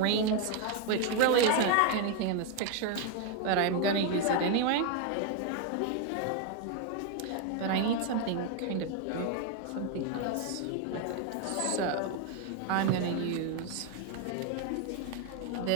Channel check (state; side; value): different; both; correlation 0.01